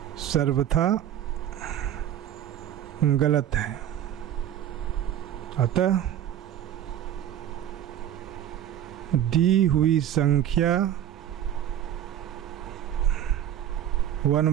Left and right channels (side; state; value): left; quieter; 10.9 dB